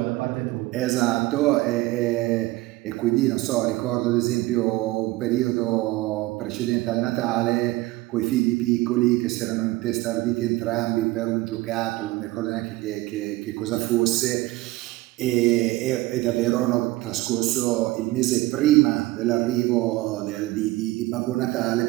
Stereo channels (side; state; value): left; quieter; 19.3 dB